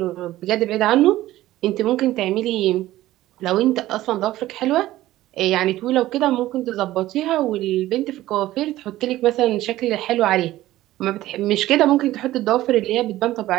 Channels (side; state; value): left; quieter; 15.5 dB